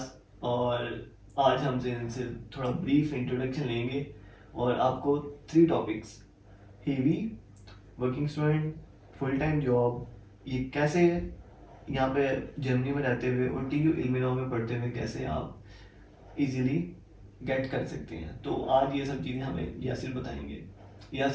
और आज हमसे इनसे थोड़ा ब्रीफ इंट्रोडक्शन लेंगे और आपको 3 topics heavy working student, full time job, ये कैसे यहाँ पे जर्मनी में रहते हुए और TU इल्मिनॉ में पढ़ते हुए कैसे आप इजीली गेट कर सकते हैं। तो आज ये सब चीज़ें हमें यासिर बताएंगे।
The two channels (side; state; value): both; identical; correlation 1.00